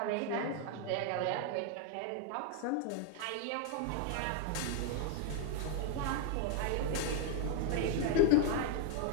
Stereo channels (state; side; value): different; both; correlation 0.00